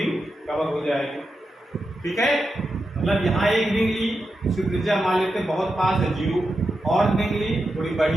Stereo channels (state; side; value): normal; both; correlation 0.88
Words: कवर हो जाएगी। ठीक है, मतलब यहाँ एक रिंग ली, उसकी त्रिज्या मान लेते हैं बहुत पास है 0, और रिंग ली थोड़ी